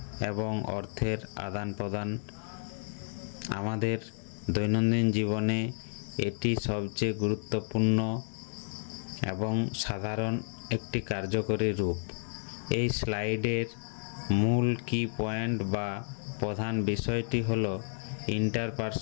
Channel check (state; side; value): silent; right; digital silence